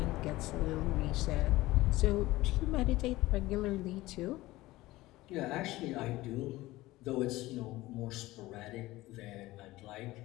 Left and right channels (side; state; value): right; quieter; 18.2 dB